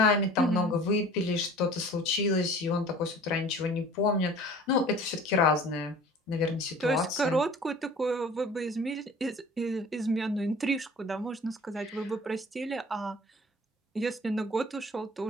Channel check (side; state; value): both; normal; correlation 0.46